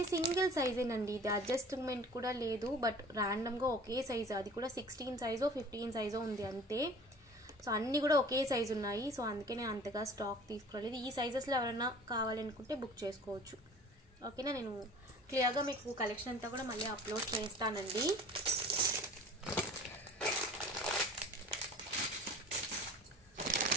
సింగిల్ సైజేనండి. ఇది అడ్జస్ట్మెంట్ కూడా లేదు. బట్ ర్యాండమ్గా ఒకే సైజు, అది కూడా 16 సైజో 15 సైజో ఉంది అంతే. సో అన్నీ కూడా ఒకే సైజు ఉన్నాయి. సో అందుకే నేను అంతగా స్టాక్ తీసుకురాలేదు. ఈ సైజెస్లో ఎవరైనా కావాలనుకుంటే బుక్ చేసుకోవచ్చు. ఓకేనా. నేను క్లియర్గా మీకు కలెక్షన్ అంతా కూడా మళ్ళీ అప్లోడ్ చేస్తానండి.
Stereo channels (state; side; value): normal; both; correlation 0.44